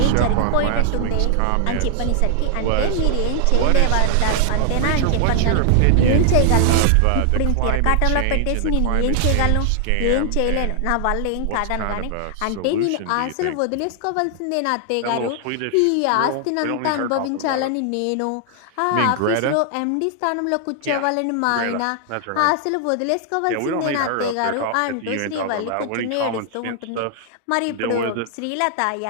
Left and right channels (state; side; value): different; both; correlation 0.00